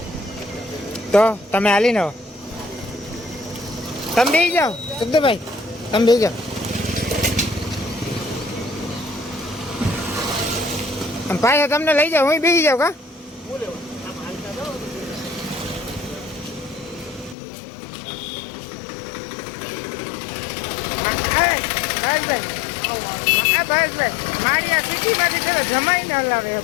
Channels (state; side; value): drops out; right; at 17.4 s